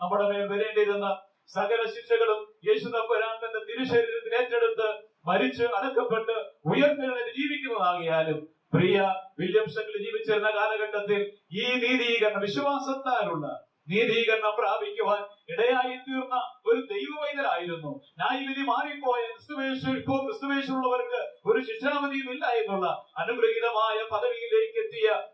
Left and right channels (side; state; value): both; identical; correlation 1.00